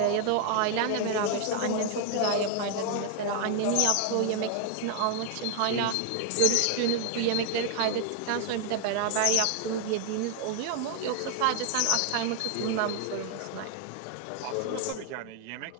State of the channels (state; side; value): different; both; correlation 0.00